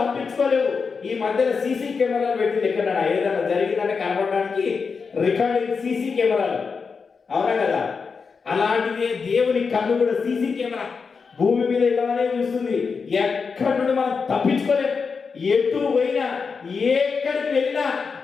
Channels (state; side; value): quieter; right; 5.3 dB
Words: ఈ మధ్యన సీసీ కెమెరాలు పెట్టింది. ఎక్కడ ఏదైనా జరిగిందంటే కనబడడానికి రికార్డింగ్ సీసీ కెమెరాలు, అవునా కదా? అలాంటిదే దేవుని కన్ను కూడా సీసీ కెమెరా భూమి మీద ఇలానే చూస్తుంది. ఎక్కడి నుండి మనం తప్పించుకోలేము. ఎటు పోయినా, ఎక్కడికి వెళ్ళినా